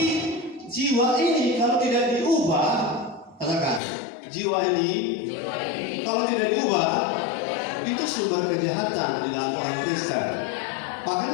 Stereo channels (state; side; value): drops out; right; at 3.8 s